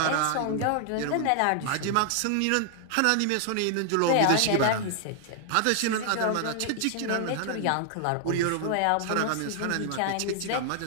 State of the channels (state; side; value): different; both; correlation 0.00